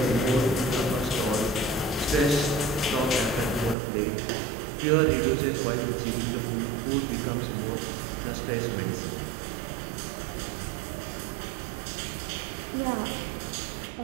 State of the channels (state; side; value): drops out; left; at 3.8 s